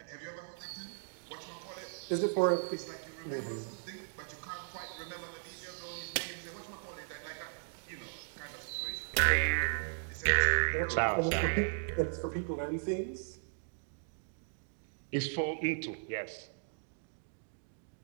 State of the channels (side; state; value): left; silent; digital silence